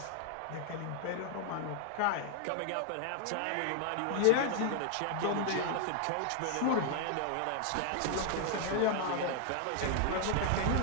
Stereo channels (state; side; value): different; both; correlation 0.00